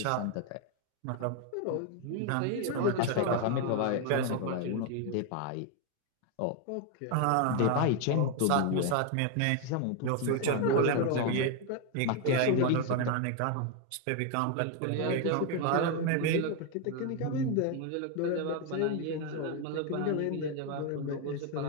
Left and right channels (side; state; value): both; different; correlation 0.01